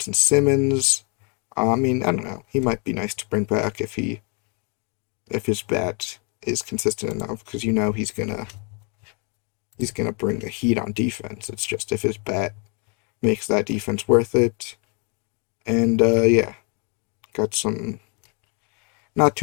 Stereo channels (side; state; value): right; quieter; 36.0 dB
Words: Simmons, I mean, I don't know. He might be nice to bring back if his bat is consistent enough, because he's gonna bring the heat on defense. It's just if his bat makes that defense worth it. And yeah, got some not